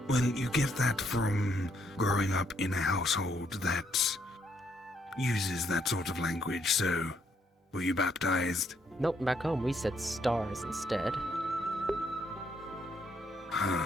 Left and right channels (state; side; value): normal; both; correlation 0.72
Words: Well, you get that from growing up in a household that uses that sort of language, so were you baptized? Nope, back home we said stars instead.